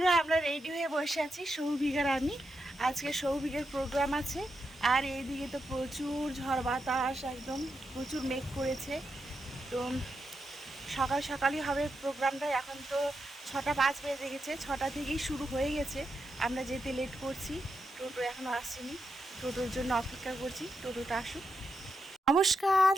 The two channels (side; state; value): both; normal; correlation 0.85